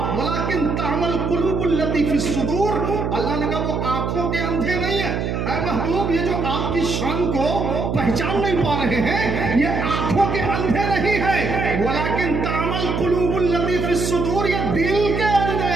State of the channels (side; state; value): right; noise; hum, 1 dB below the sound